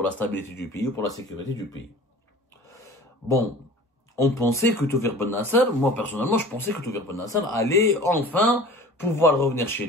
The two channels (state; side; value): normal; both; correlation 0.42